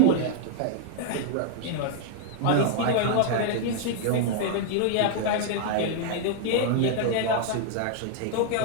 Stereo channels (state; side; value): different; both; correlation -0.01